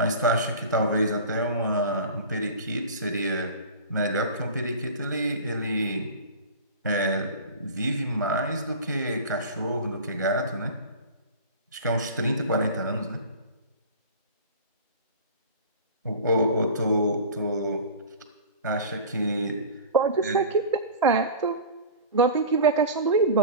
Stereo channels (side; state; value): both; inverted; correlation -0.35